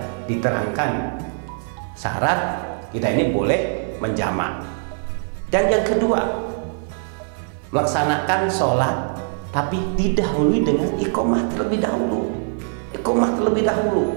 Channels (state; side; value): silent; left; 64 dB below the other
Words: diterangkan syarat kita ini boleh menjamak. Dan yang kedua, melaksanakan sholat tapi didahului dengan iqomah terlebih dahulu. Iqomah terlebih dahulu.